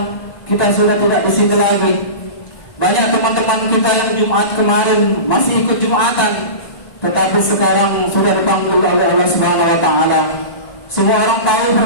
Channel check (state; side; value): late; right; 1.9 ms